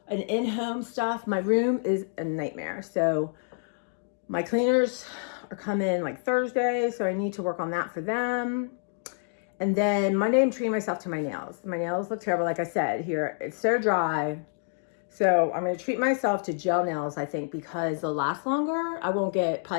an in-home stuff. My room is a nightmare. So my cleaners are coming like Thursday, so I need to work on that for them. And then Monday, I'm treating myself to my nails. My nails look terrible, like I said here. It's so dry. So I'm going to treat myself to gel nails, I think, because they'll last longer. I won't get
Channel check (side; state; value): right; silent; digital silence